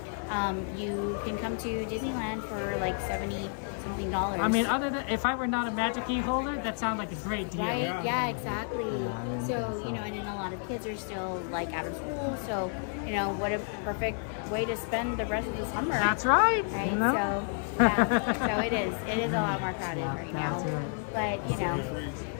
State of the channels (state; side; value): silent; right; 57 dB below the other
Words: you can come to Disneyland for like $70-something. I mean, other than if I were not a Magic Key holder, that sounds like a great deal. Right? Yeah, exactly. So and then a lot of kids are still like out of school, so what a perfect way to spend the rest of the summer. That's right. Right. You know? So so it is a lot more crowded right now. Right. But